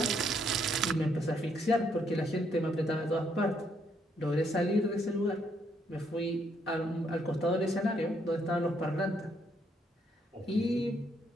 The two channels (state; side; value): normal; both; correlation 0.72